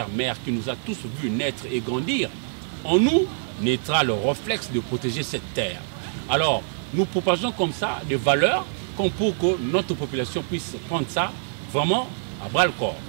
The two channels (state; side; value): silent; left; digital silence